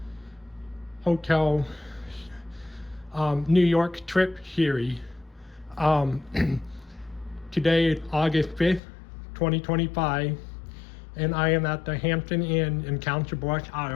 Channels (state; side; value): drops out; right; at 8.8 s